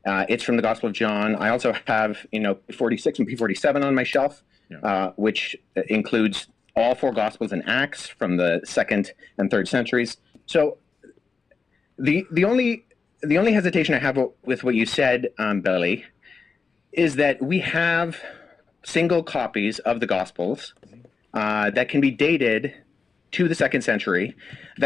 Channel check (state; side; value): quieter; right; 4.9 dB